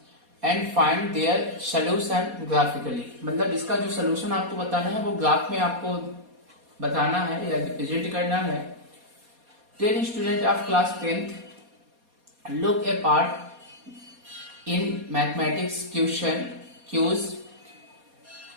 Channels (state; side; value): late; left; 4.2 ms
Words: and find their solution graphically. मतलब इसका जो सोल्यूशन आपको बताना है वो ग्राफ में आपको बताना है या रिप्रेजेंट करना है। 10 students of class 10th look a part in mathematics question cues.